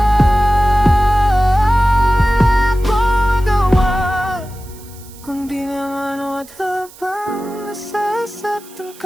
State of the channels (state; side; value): noise; right; hiss, 22 dB below the sound